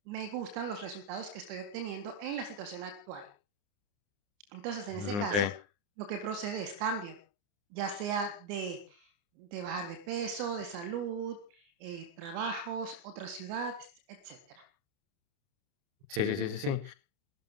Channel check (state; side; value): late; left; 29 ms